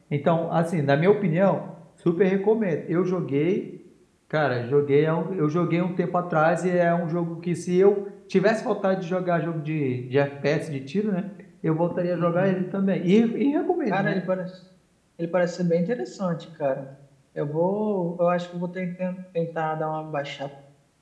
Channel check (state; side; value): identical; both; correlation 1.00